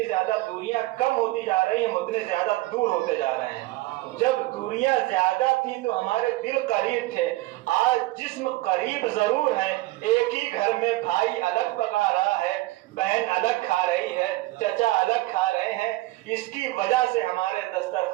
زیادہ دوریاں کم ہوتی جا رہی ہیں، اتنے زیادہ دور ہوتے جا رہے ہیں. جب دوریاں زیادہ تھی تو ہمارے دل قریب تھے، آج جسم قریب ضرور ہیں. ایک ہی گھر میں بھائی الگ پکا رہا ہے، بہن الگ کھا رہی ہے، چچا الگ کھا رہے ہیں. اس کی وجہ سے ہمارے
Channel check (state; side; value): quieter; left; 19.0 dB